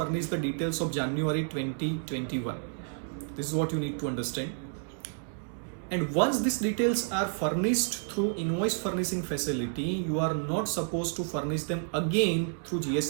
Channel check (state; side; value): silent; left; 58 dB below the other